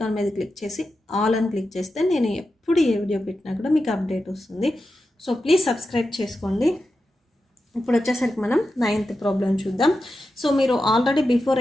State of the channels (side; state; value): both; normal; correlation 0.90